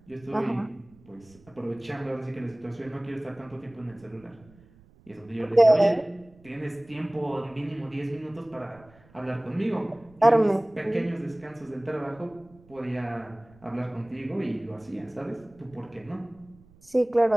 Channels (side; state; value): right; noise; rumble, 26 dB below the sound